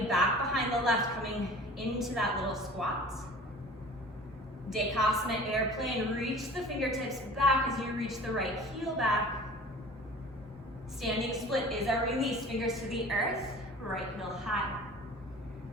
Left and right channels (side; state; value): both; normal; correlation 0.43